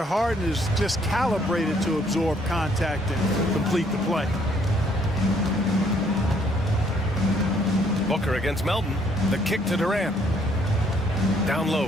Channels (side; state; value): both; normal; correlation 0.66